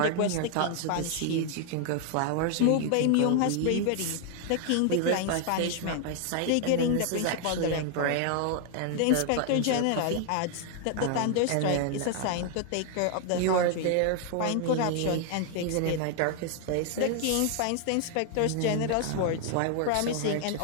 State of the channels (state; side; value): different; both; correlation 0.00